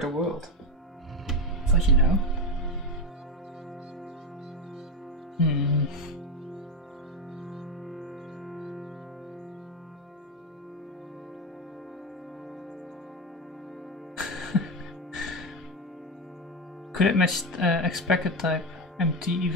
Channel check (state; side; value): normal; both; correlation 0.14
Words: the world. Thought you know. Could it match expected type empty